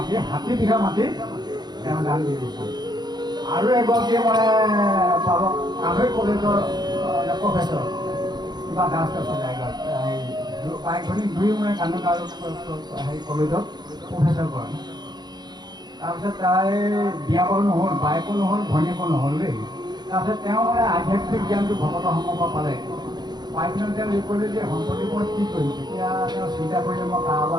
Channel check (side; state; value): left; late; 0.20 ms